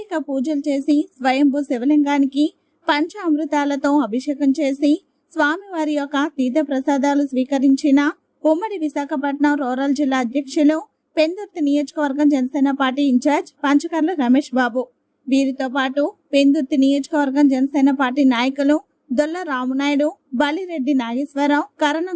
పూజలు చేసి స్వయంభూ శివలింగానికి పంచామృతాలతో అభిషేకం చేసి స్వామివారి యొక్క తీర్థ ప్రసాదాలు స్వీకరించిన ఉమ్మడి విశాఖపట్నం రూరల్ జిల్లా అధ్యక్షులు, పెందుర్తి నియోజకవర్గం జనసేన పార్టీ ఇన్ఛార్జ్ పంచకర్ల రమేష్ బాబు. వీరితో పాటు పెందుర్తి నియోజకవర్గం జనసేన పార్టీ నాయకులు దొల్ల రామునాయుడు, బలిరెడ్డి నాగేశ్వరరావు, కరణం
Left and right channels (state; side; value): identical; both; correlation 1.00